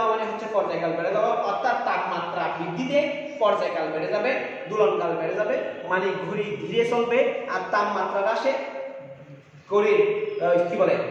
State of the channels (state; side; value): identical; both; correlation 1.00